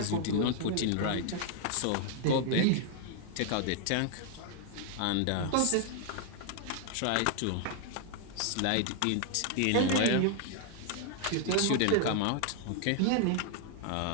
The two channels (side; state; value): both; different; correlation 0.00